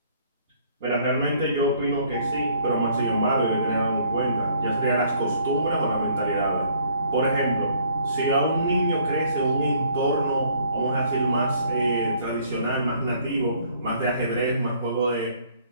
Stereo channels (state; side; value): inverted; both; correlation -0.61